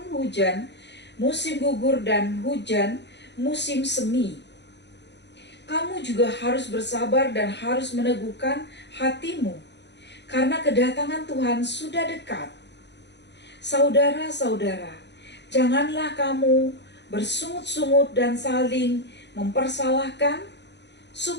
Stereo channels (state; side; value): late; right; 0.51 ms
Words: hujan, musim gugur dan hujan, musim semi. Kamu juga harus bersabar dan harus meneguhkan hatimu, karena kedatangan Tuhan sudah dekat. Saudara-saudara, janganlah kamu bersungut-sungut dan saling mempersalahkan,